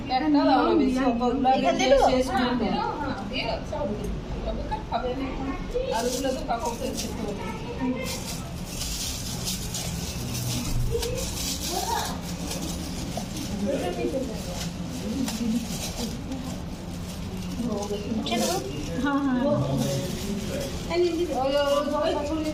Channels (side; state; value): both; identical; correlation 1.00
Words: একটা দাও না বেশি কতগুলো এখানে শেষ করে দাও হ্যাঁ দিয়ে সব তবে খাবে না আর ওগুলো তো কাককে খেতে হবে